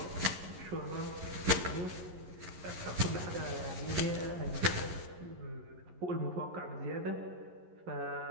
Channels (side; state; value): left; late; 11 ms